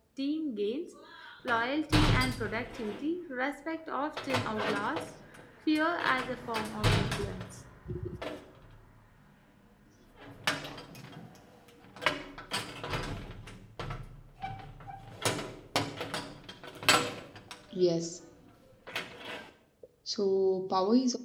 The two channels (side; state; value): both; identical; correlation 1.00